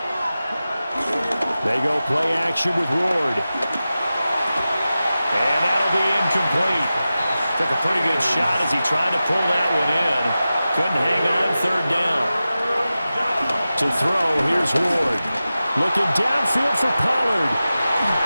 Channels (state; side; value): inverted; both; correlation -0.94